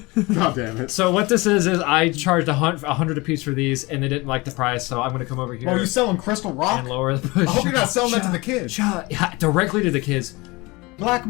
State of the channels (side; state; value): right; quieter; 23.8 dB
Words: God damn it. So what this is I charged $100 a piece for these, and they didn't like the price, so I'm gonna come over here. Oh, you selling Crystal Rock? and lower the. I hope you're not selling that to the kids. Yeah, directly to the kids. Black